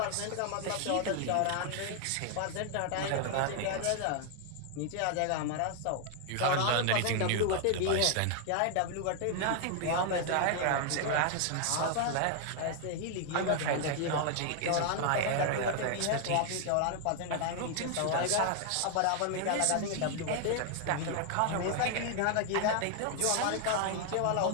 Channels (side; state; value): both; different; correlation 0.00